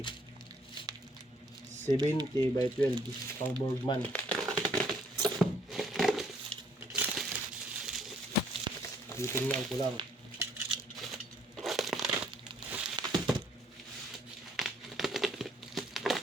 70 by 12 pang Borgman. Titingnan ko lang.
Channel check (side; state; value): both; normal; correlation 0.64